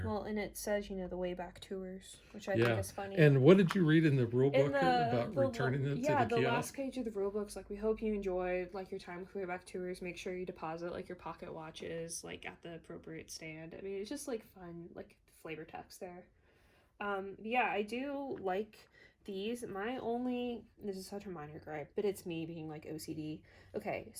Well, and it says, you know, the way back tours, which I think is funny. And what did you read in the rule book about returning it to the kiosk? Yeah, the last page of the rule book's like, we hope you enjoyed, like, your time with way back tours. Make sure you deposit, like, your pocket watches, like, at the appropriate stand. I mean, it's just, like, fun, like, flavor text there. Yeah, I do like these. This is such a minor gripe, but it's me being like OCD. Okay,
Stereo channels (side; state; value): both; identical; correlation 1.00